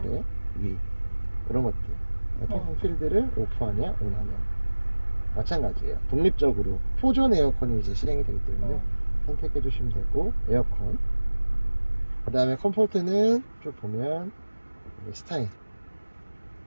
위 이런 것들, 통풍 필드를 오프하냐 온하냐 마찬가지예요. 독립적으로 포존 에어컨이 이제 실행이 되기 때문에 네. 선택해 주시면 되고, 에어컨, 그 다음에 컴포트는 쭉 보면 스타일,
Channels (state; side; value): inverted; both; correlation -1.00